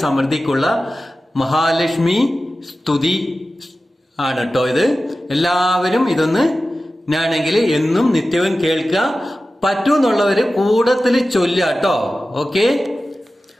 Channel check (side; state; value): both; normal; correlation 0.95